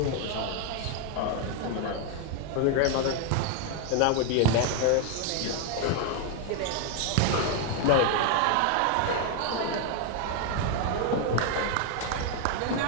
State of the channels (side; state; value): both; different; correlation 0.00